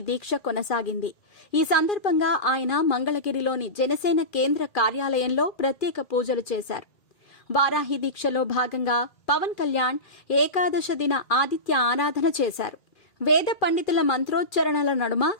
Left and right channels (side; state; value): right; late; 2.4 ms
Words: దీక్ష కొనసాగింది. ఈ సందర్భంగా ఆయన మంగళగిరిలోని జనసేన కేంద్ర కార్యాలయంలో ప్రత్యేక పూజలు చేశారు. వారాహి దీక్షలో భాగంగా పవన్ కళ్యాణ్ ఏకాదశ దిన ఆదిత్య ఆరాధన చేశారు. వేద పండితుల మంత్రోచ్చరణల నడుమ